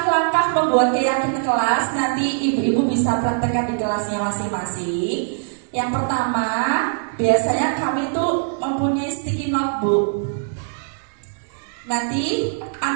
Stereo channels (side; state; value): left; silent; digital silence